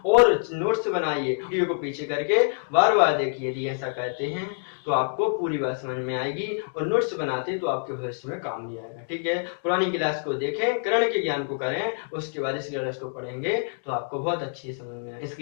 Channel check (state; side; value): silent; right; digital silence